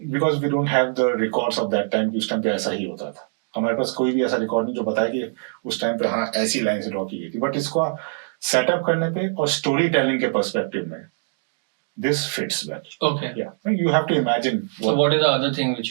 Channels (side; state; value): left; silent; digital silence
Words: Because we don't have the records of that time कि उस टाइम पे ऐसा ही होता था. हमारे पास कोई भी ऐसा रिकॉर्ड नहीं जो बताए कि उस टाइम पे हाँ ऐसी लाइन से ड्रॉ की गई थी. बट इसको सेटअप करने पे और स्टोरी टेलिंग के पर्सपेक्टिव में this fits well. Okay. Yeah, you have to imagine. So what is the other thing which